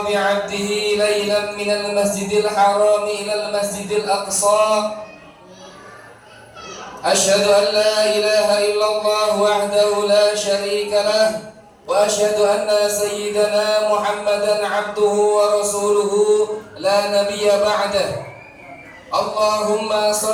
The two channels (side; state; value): both; identical; correlation 1.00